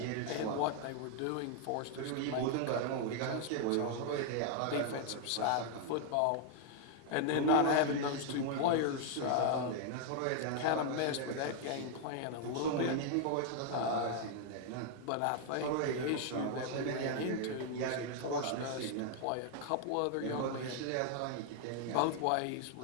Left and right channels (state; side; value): different; both; correlation 0.00